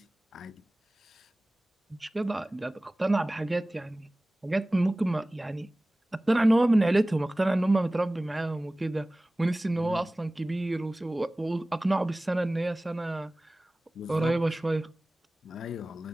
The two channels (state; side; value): normal; both; correlation 0.98